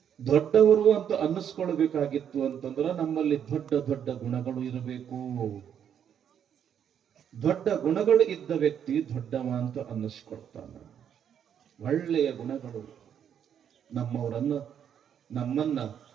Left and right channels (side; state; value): left; quieter; 8.8 dB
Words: ದೊಡ್ಡವರು ಅಂತ ಅನ್ನಿಸ್ಕೊಳ್ಬೇಕಾಗಿತ್ತು ಅಂತಂದ್ರ ನಮ್ಮಲ್ಲಿ ದೊಡ್ಡ ದೊಡ್ಡ ಗುಣಗಳು ಇರಬೇಕು. ದೊಡ್ಡ ಗುಣಗಳು ಇದ್ದ ವ್ಯಕ್ತಿ ದೊಡ್ಡವ ಅಂತ ಅನ್ನಿಸ್ಕೊಳ್ತಾನ. ಒಳ್ಳೆಯ ಗುಣಗಳು ನಮ್ಮನ್ನ